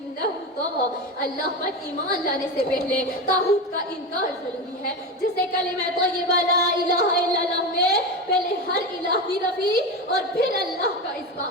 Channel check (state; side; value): normal; both; correlation 0.20